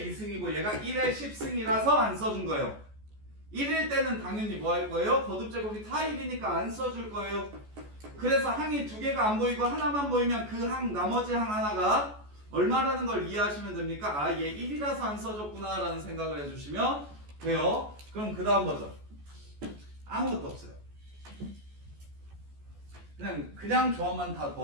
2승이고 얘가 1의 10승이라서 안 써준 거예요. 1일 때는 당연히 뭐 할 거예요? 거듭 제곱이 다 1이니까 안 써줄 거예요. 그래서 항이 두 개가 안 보이고 하나만 보이면 그 항 나머지 항 하나가 얼마라는 걸 이해하시면 됩니까? 아, 얘 1이라서 안 써줬구나 라는 생각을 해주시면 돼요. 그럼 그 다음 버전 아무것도 없어요. 그냥 조합만 다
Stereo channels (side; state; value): left; late; 14 ms